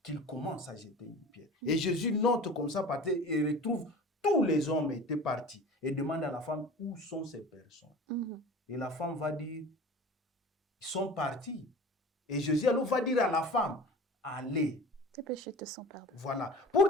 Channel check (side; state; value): both; normal; correlation 0.38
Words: qu'il commence à jeter une pierre. Et Jésus note comme ça, et retrouve tous les hommes étaient partis. Et demande à la femme, où sont ces personnes? Et la femme va dire, ils sont partis. Et Jésus alors va dire à la femme, allez. Tes péchés te sont pardonnés. Voilà. Pour